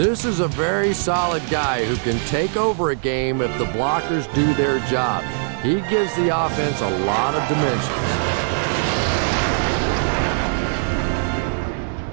is a very solid guy who can take over a game if the blockers do their job. He gives the offense a lot of dimensions.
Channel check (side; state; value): left; silent; digital silence